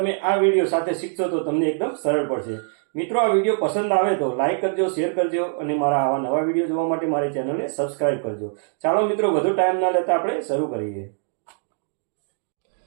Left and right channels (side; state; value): left; silent; 62 dB below the other